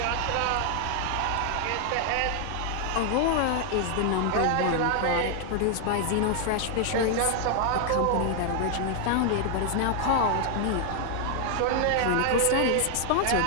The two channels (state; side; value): different; both; correlation 0.00